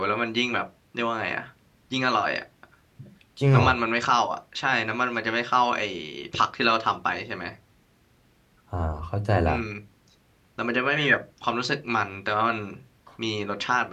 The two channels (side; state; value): both; identical; correlation 1.00